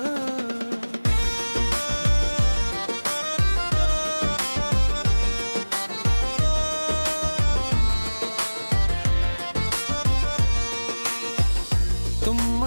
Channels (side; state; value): both; inverted; correlation -1.00